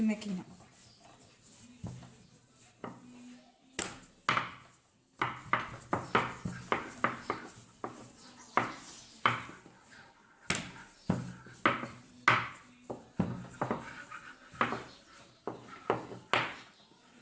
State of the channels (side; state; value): both; identical; correlation 1.00